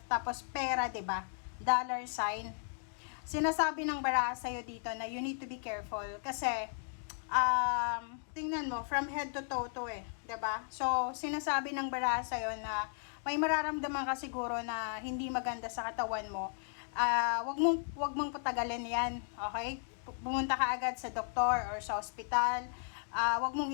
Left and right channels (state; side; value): silent; right; digital silence